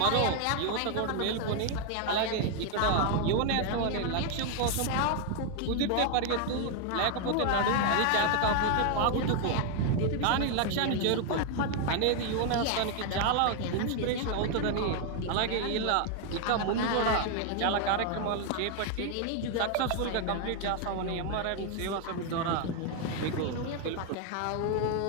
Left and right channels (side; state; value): both; different; correlation 0.00